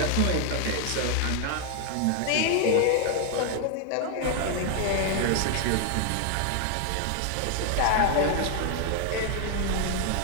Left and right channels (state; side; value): different; both; correlation 0.00